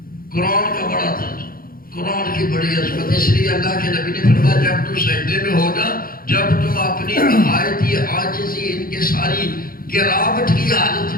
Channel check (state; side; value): late; right; 0.42 ms